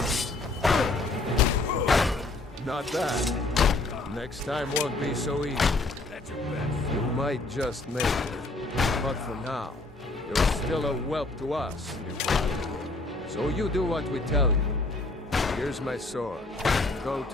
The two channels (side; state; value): right; quieter; 3.1 dB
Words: Not that. Next time won't be so easy. That's your best. You might just make it. But for now, you're still a whelp to us, you blood. So you do what we tell you. Here's my sword. Go